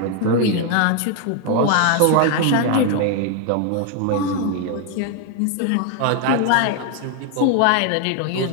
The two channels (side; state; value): both; different; correlation 0.01